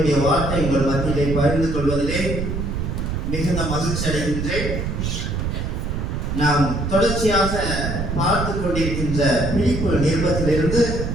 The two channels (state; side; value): noise; right; rumble, 2 dB below the sound